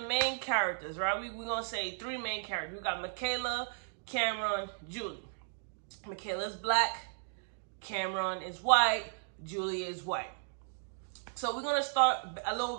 main characters, right? We're gonna say three main characters. We got Mikaela, Cameron, Julie. Mikaela is black, Cameron is white, Julie is white. So we're going to start a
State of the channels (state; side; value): silent; left; digital silence